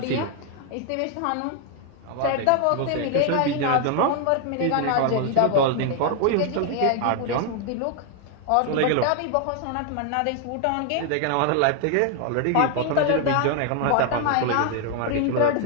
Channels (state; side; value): different; both; correlation 0.00